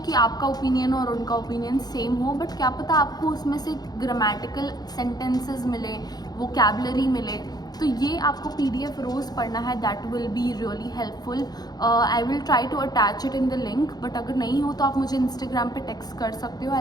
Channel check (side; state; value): right; late; 0.19 ms